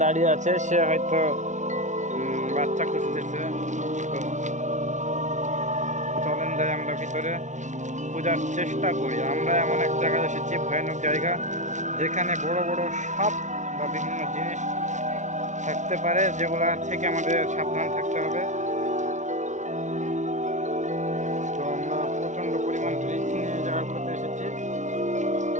দাঁড়িয়ে আছে, সে হয়তো বাচ্চা খুঁজতেছে। তো চলেন যাই আমরা ভিতরে খোঁজার চেষ্টা করি। আমরা এমন এক জায়গায় এসেছি, ভয়ানক জায়গা, যেখানে বড় বড় সাপ বা বিভিন্ন জিনিস থাকতে পারে, যেগুলা থেকে আমাদের সাবধান থাকতে হবে। তো আমরা প্রচণ্ড পরিমাণ রিস্ক নিয়ে এই জায়গাগুলোতে এসেছি।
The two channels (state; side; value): late; left; 0.35 ms